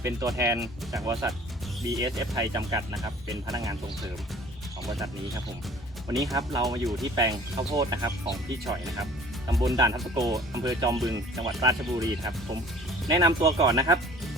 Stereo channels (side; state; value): both; normal; correlation 0.49